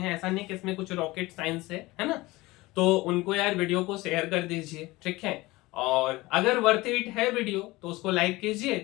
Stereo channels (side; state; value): right; quieter; 20.5 dB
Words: ऐसा नहीं कि इसमें कुछ रॉकेट साइंस है ना। तो उनको यार वीडियो को शेयर कर दीजिए, ठीक है। और अगर वर्थ इट है वीडियो तो उसको लाइक